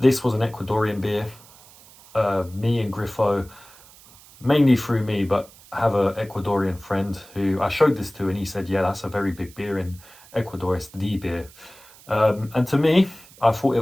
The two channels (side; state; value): right; noise; hiss, 23 dB below the sound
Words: was an Ecuadorian beer. Me and Griffo, mainly through me, but I have an Ecuadorian friend who I showed this to, and he said, yeah, that's a very big beer in Ecuador, it's the beer. And to me, I thought